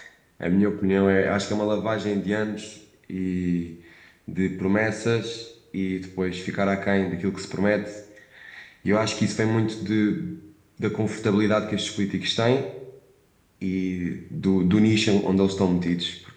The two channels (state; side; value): identical; both; correlation 1.00